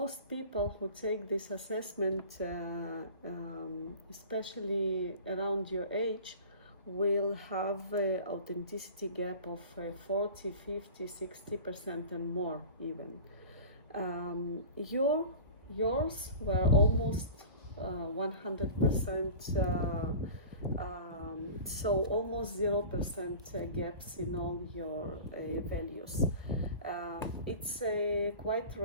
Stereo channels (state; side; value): inverted; both; correlation -0.38